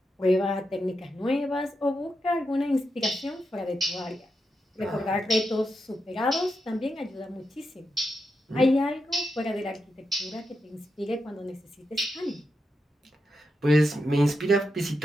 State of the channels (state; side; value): normal; both; correlation 0.86